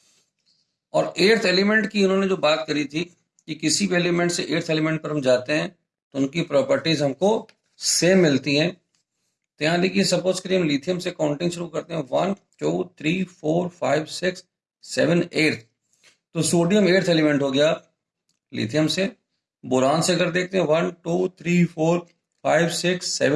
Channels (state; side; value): identical; both; correlation 1.00